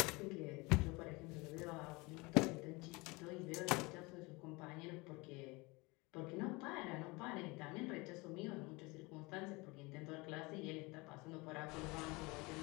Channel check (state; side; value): quieter; right; 25.0 dB